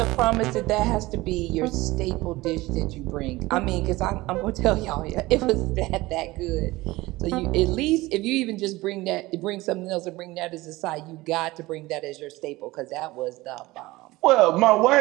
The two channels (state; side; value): quieter; left; 19.7 dB